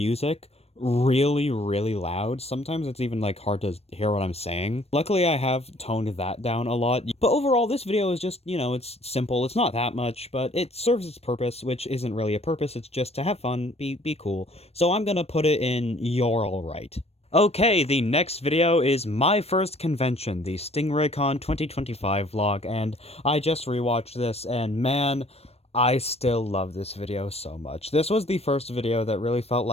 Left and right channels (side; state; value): right; late; 0.30 ms